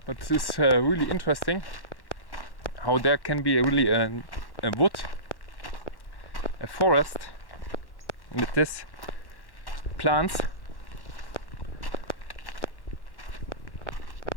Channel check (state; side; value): late; right; 1.1 ms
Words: but this is really interesting how there can be really a wood, a forest with this plants.